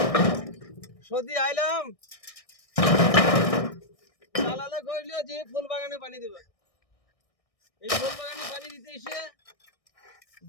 সদি আইলাম চালালে কইলো যে ফুল বাগানে পানি দিবে এই ফুল বাগানে পানি দিতে এসে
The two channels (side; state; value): right; late; 1.6 ms